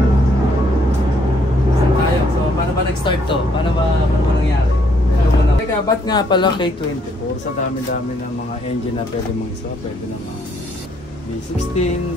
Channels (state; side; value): normal; both; correlation 0.69